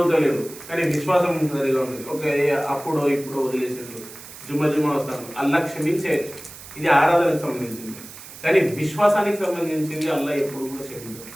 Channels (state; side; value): noise; right; hiss, 16 dB below the sound